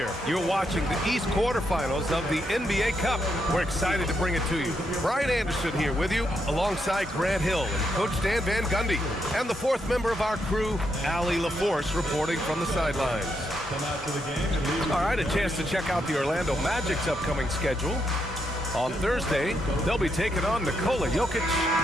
You're watching the East quarterfinals of the NBA Cup. We're excited to bring it to you. Brian Anderson here with you, alongside Grant Hill and Coach Dan Van Gundy, and the fourth member of our crew, Allie LaForce, reporting from the sidelines. All right, a chance to check out the Orlando Magic's upcoming schedule. On Thursday, they'll be taking on Nikola Jokic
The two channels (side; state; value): both; normal; correlation 0.80